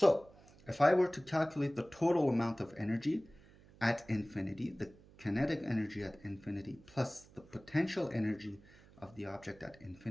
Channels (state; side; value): noise; right; hum, 24 dB below the sound